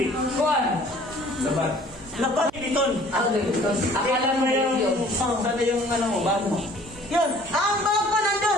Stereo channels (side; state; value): right; noise; hum, 23 dB below the sound